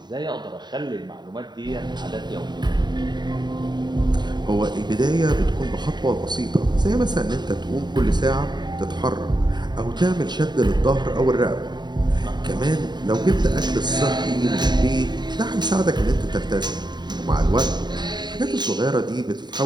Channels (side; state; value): left; late; 0.21 ms